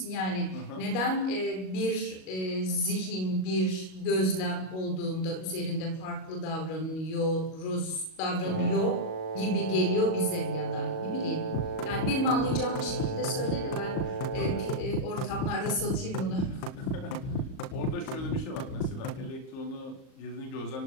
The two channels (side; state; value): right; late; 38 ms